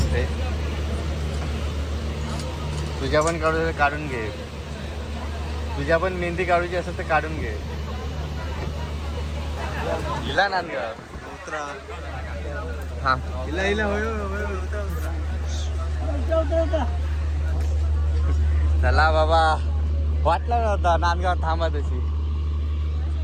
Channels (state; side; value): identical; both; correlation 1.00